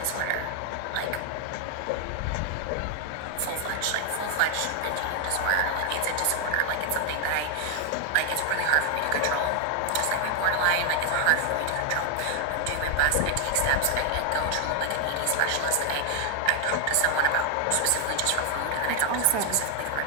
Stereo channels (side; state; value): both; different; correlation 0.00